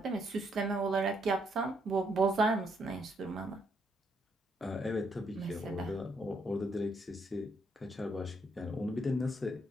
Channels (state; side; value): normal; both; correlation 0.74